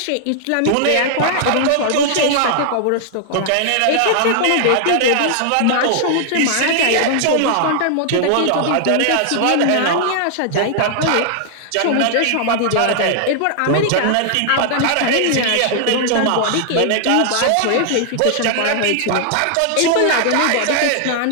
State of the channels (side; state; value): both; different; correlation -0.01